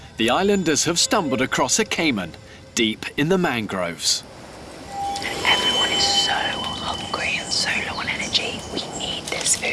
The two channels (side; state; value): both; identical; correlation 1.00